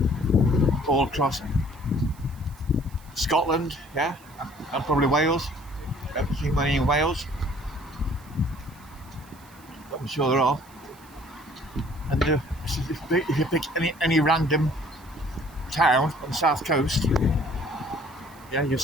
all across Scotland, yeah, and probably Wales. I haven't seen many in Wales, but I'm sure there are. And if you pick any random town on the south coast, yeah, you'll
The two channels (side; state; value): right; noise; hiss, 26 dB below the sound